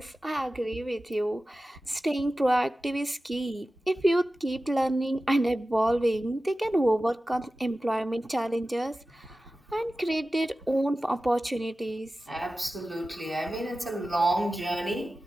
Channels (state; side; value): normal; both; correlation 0.95